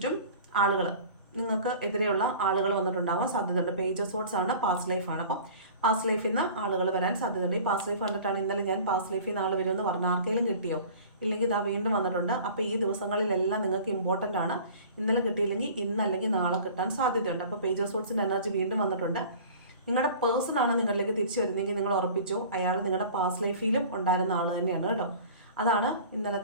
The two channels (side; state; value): both; inverted; correlation -0.43